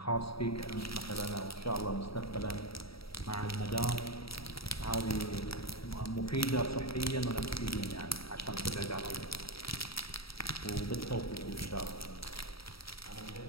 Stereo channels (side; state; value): right; late; 0.76 ms